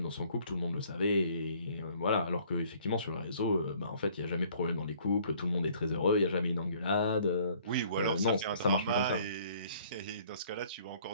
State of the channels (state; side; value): inverted; both; correlation -0.58